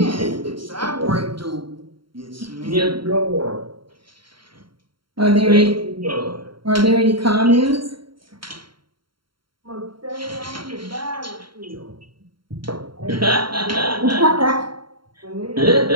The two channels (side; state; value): left; late; 0.73 ms